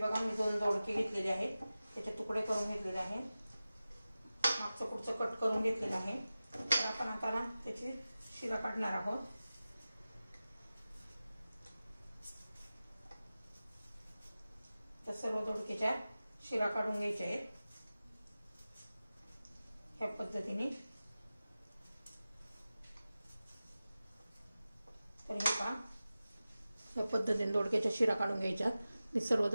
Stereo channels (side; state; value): both; inverted; correlation -0.95